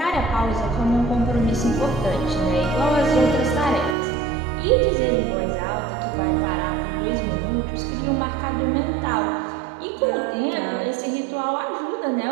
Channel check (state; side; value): drops out; left; at 4.0 s